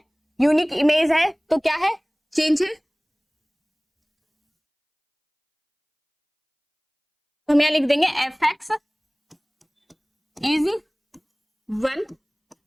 यूनिक इमेज है, तो क्या है, चेंज है। तो हम यहां लिख देंगे f x is 1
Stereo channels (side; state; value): both; identical; correlation 1.00